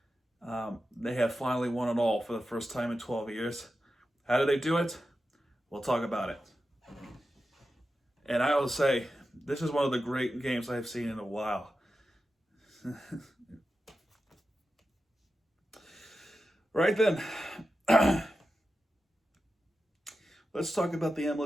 they have finally won it all for the first time in 12 years. How did they do it? We'll talk about it. And I will say, this is one of the great games I've seen in a while. Right then, let's talk about the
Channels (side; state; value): both; normal; correlation 0.91